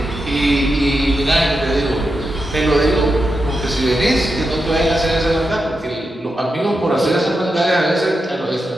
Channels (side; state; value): both; normal; correlation 0.88